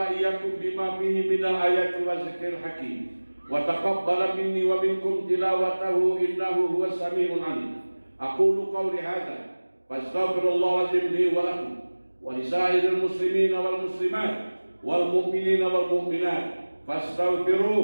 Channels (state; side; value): inverted; both; correlation -1.00